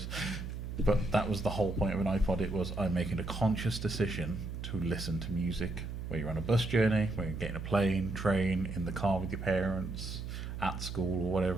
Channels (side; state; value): right; noise; hum, 6 dB below the sound